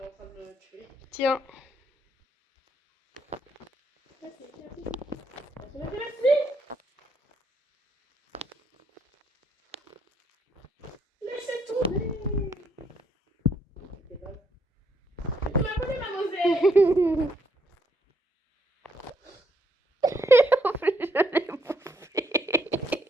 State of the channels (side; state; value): both; normal; correlation 0.73